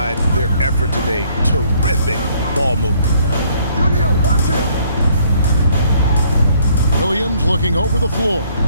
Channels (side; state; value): both; inverted; correlation -0.64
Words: their effort today. Terrific ball movement. Watch him. Williams looking over the floor.